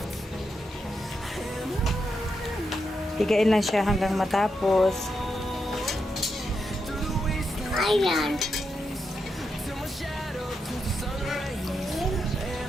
Pigain lang siya hanggang matapos. Ayan.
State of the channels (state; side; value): normal; both; correlation 0.84